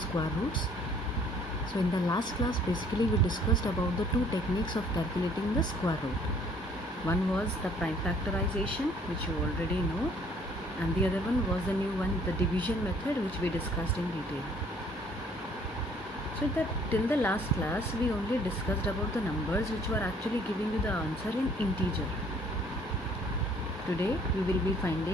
roots. So in the last class basically we discussed about the two techniques of calculating the square root. One was the prime factorization, which you already know, and the other one was the new one, the division method, which we discussed in detail. So till the last class we only discussed about the numbers which were actually giving you the answer in integer. Today we will be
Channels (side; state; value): both; normal; correlation 0.59